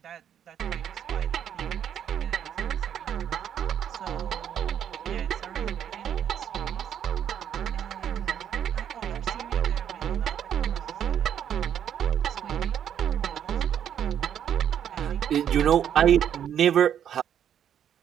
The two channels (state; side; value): quieter; left; 9.4 dB